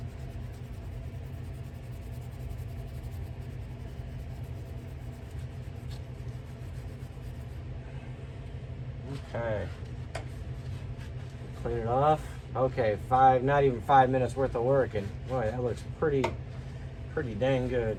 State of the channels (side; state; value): both; identical; correlation 1.00